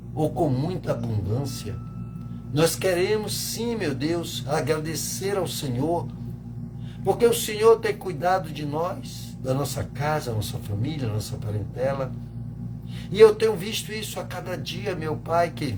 ou com muita abundância, nós queremos sim, meu Deus, agradecer ao Senhor, porque o Senhor tem cuidado de nós, da nossa casa, nossa família, nossa parentela. E eu tenho visto isso a cada dia, meu Pai, que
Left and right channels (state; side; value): identical; both; correlation 1.00